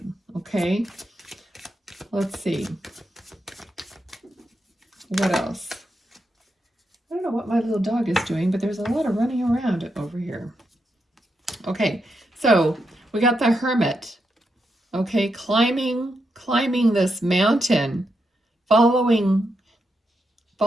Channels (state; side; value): normal; both; correlation 0.84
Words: Okay. Let's see. What else? I don't know what my little dog is doing, but there's a lot of running around over here. Okay, so we got the Hermit. Okay, climbing this mountain, following